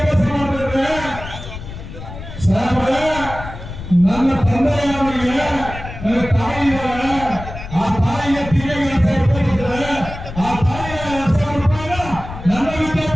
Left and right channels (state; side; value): noise; left; rumble, 11 dB below the sound